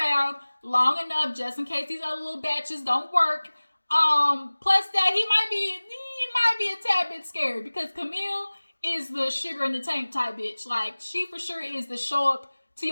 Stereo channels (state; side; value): inverted; both; correlation -1.00